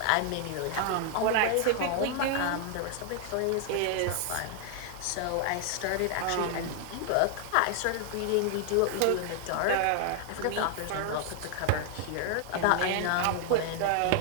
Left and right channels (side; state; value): both; different; correlation 0.00